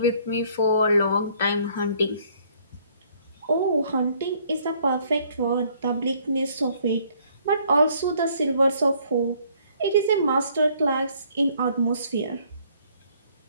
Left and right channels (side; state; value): both; inverted; correlation -0.63